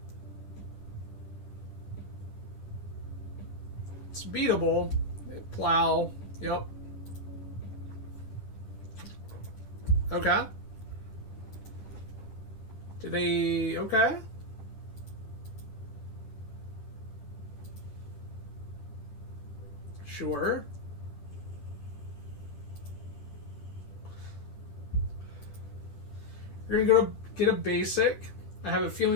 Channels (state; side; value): late; right; 10 ms